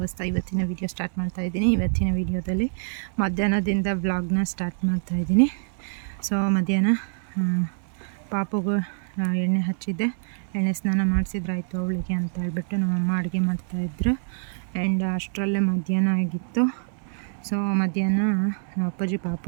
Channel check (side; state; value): left; silent; 61 dB below the other